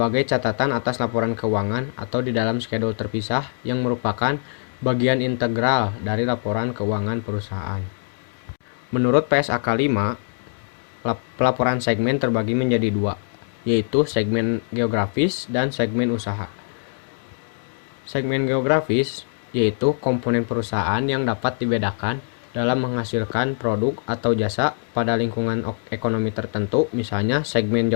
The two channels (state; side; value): silent; right; digital silence